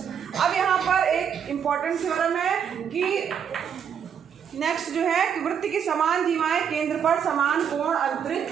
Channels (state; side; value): quieter; left; 7.9 dB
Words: अब यहाँ पर एक इम्पोर्टेंट थ्योरम है कि नेक्स्ट जो है कि वृत्त की समान जीवाएं केंद्र पर समान कोण अंतरित